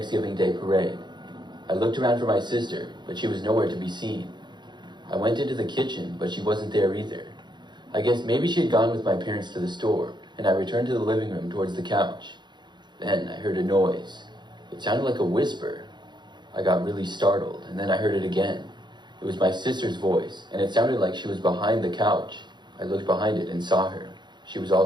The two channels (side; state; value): left; late; 0.21 ms